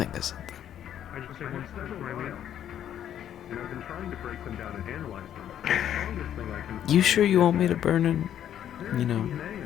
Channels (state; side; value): quieter; right; 10.4 dB